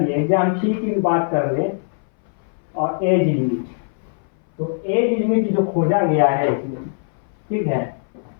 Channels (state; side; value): silent; right; 61 dB below the other